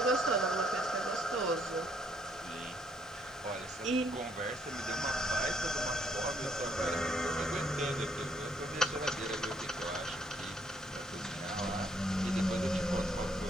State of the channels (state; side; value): normal; both; correlation 0.68